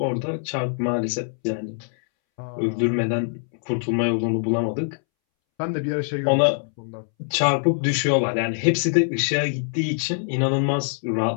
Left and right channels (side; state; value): right; silent; 63 dB below the other